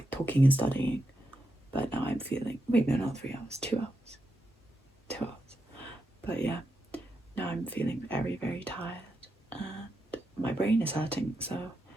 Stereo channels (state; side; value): normal; both; correlation 0.85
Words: talking and studying. But now I'm feeling, wait, no, not 3 hours, 2 hours. 2 hours. But yeah, now I'm feeling very, very tired and my brain is hurting, so